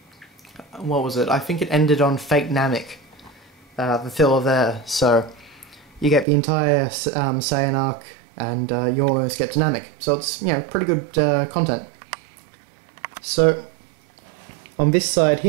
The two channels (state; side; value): drops out; left; at 6.2 s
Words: what was it? I think it ended on Fake Namek, the filler there. So you get the entire Saiyan arc, and you almost get to Namek. So it's, pretty good content. So, on this side